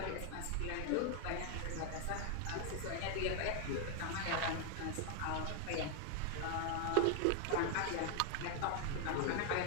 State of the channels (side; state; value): both; different; correlation 0.00